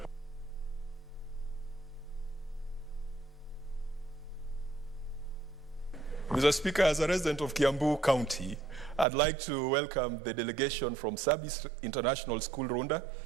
Mr. Speaker, as a resident of Kiambu County, I'd like to welcome the delegation from Sabis International School, Runda.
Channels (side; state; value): left; drops out; at 9.1 s